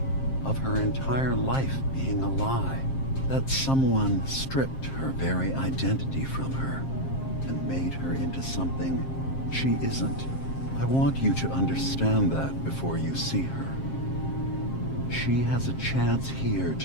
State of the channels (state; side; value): late; right; 7.5 ms